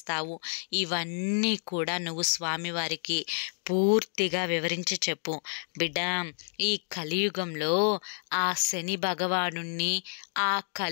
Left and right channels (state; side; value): silent; right; 58 dB below the other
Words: ఇవన్నీ కూడా నువ్వు స్వామివారికి పూర్తిగా వివరించి చెప్పు. బిడ్డ ఈ కలియుగంలో ఆ శని భగవానుణ్ణి, ఆ